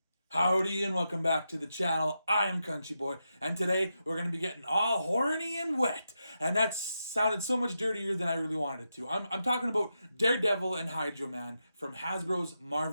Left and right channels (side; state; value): both; inverted; correlation -0.86